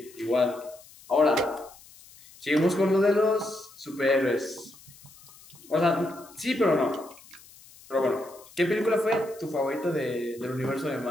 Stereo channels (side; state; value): left; noise; hiss, 23 dB below the sound